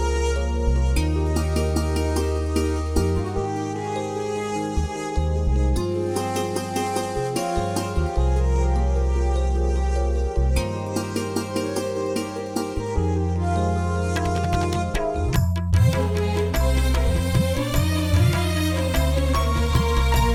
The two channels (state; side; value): identical; both; correlation 1.00